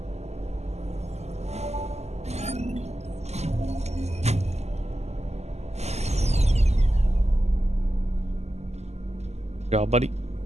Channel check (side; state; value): left; late; 0.32 ms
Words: Good job, buddy.